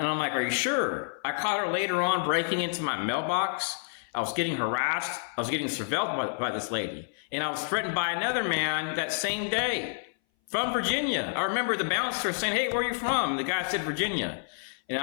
I'm like, are you sure? I caught her later on breaking into my mailbox. I was getting harassed. I was getting surveilled by this lady. And I was threatened by another man that same day from Virginia. I remember the bouncer saying, hey, where are you from? The guy said Virginia. And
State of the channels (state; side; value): silent; right; 58 dB below the other